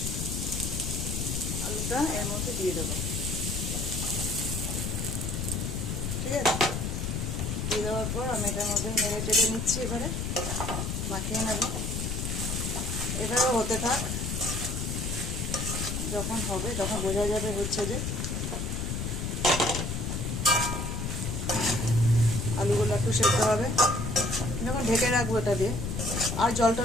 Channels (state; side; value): noise; left; rumble, 2 dB below the sound